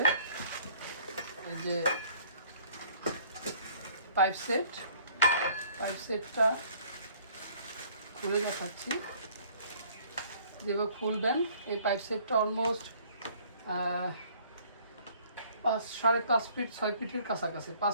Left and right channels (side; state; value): both; inverted; correlation -0.57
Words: এই যে পাইপ সেটটা খুলে দেখাচ্ছি। যেভাবে খুলবেন এই পাইপ সেটটা অলমোস্ট 5.5 ফিট 6 ফিটের কাছাকাছি, 5